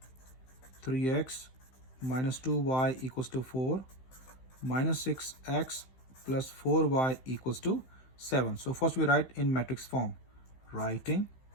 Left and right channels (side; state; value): right; late; 15 ms